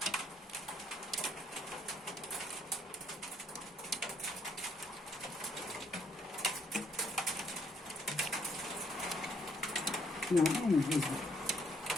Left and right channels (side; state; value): both; normal; correlation 0.70